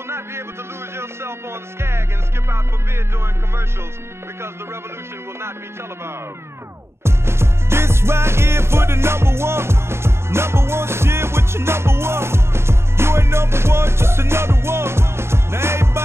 not be able to lose yourself on Skag and skip out for beer during commercials because the revolution will not be televised. This right here for the number one shit with your number one. You ain't number one, just another one. Now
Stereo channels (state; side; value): late; left; 0.12 ms